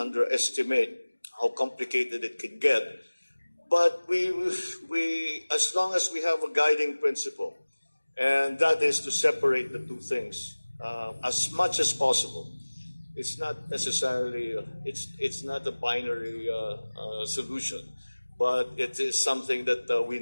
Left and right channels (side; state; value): both; inverted; correlation -1.00